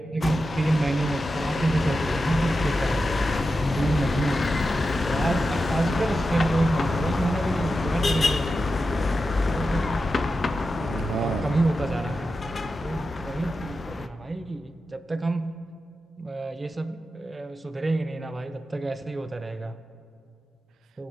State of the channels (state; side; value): normal; both; correlation 0.91